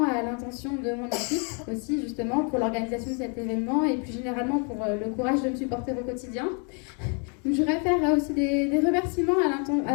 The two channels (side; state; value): right; quieter; 38.2 dB